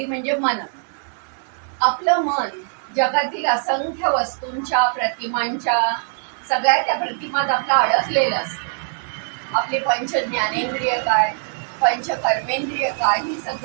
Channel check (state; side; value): silent; left; digital silence